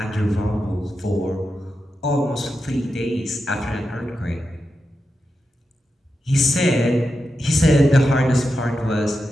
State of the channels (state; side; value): normal; both; correlation 0.89